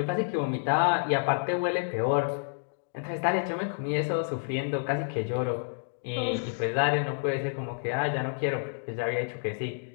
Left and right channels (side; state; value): right; silent; digital silence